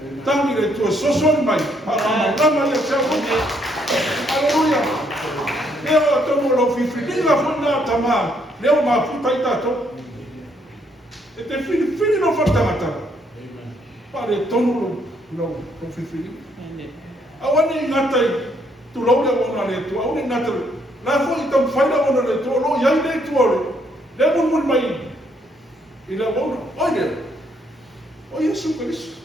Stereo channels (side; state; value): both; normal; correlation 0.71